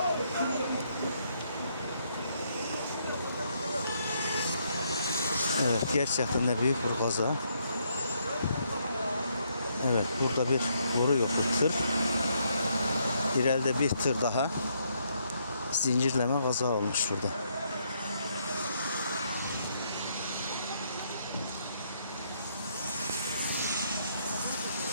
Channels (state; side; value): inverted; both; correlation -0.73